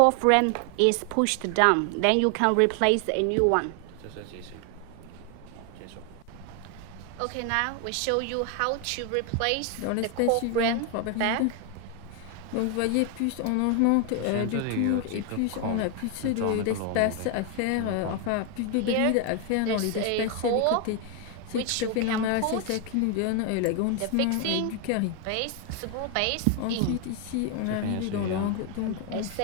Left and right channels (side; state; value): both; different; correlation 0.01